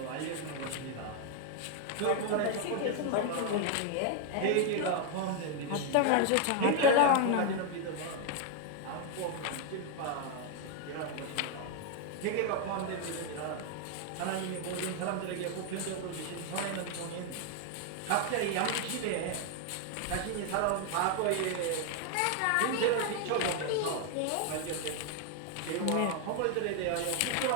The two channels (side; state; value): both; different; correlation 0.00